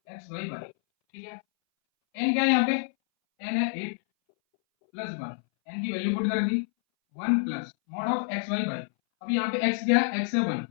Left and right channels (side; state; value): right; silent; 59 dB below the other